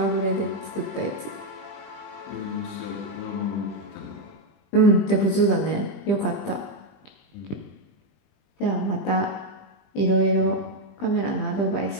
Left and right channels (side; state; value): right; late; 20 ms